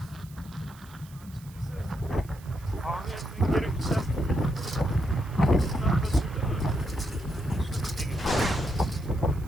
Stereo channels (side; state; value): right; noise; hiss, 24 dB below the sound